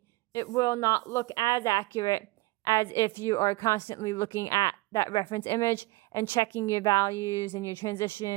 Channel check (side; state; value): left; quieter; 21.5 dB